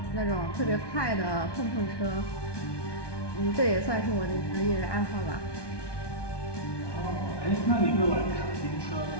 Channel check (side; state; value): right; late; 1.2 ms